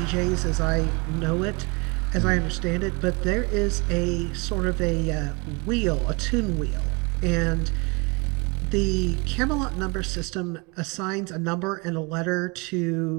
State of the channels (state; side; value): quieter; left; 29.2 dB